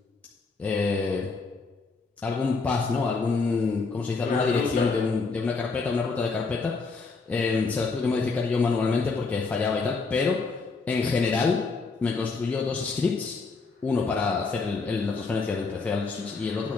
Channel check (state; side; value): quieter; right; 4.3 dB